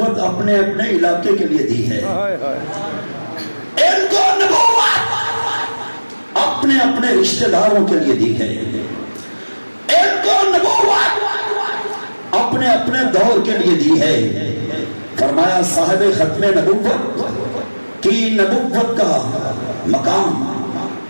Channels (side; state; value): both; inverted; correlation -1.00